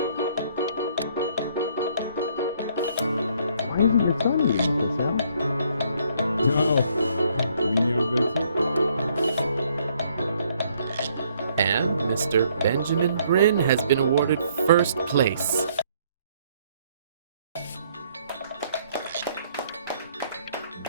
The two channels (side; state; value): both; inverted; correlation -0.66